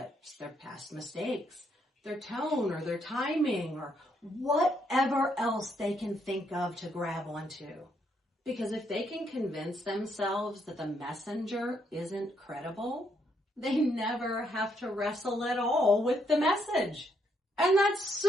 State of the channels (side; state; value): both; normal; correlation 0.74